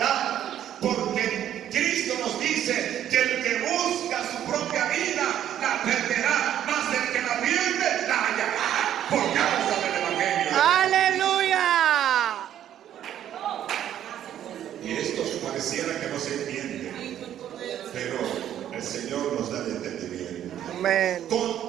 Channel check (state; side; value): quieter; left; 10.9 dB